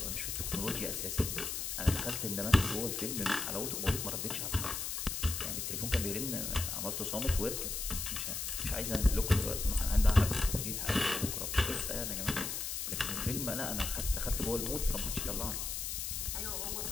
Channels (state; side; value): noise; left; hiss, 3 dB below the sound